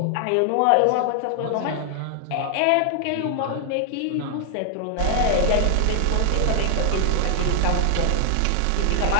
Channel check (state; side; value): different; both; correlation 0.00